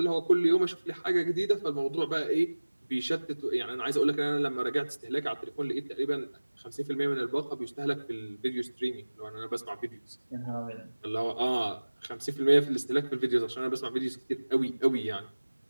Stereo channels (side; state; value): both; inverted; correlation -1.00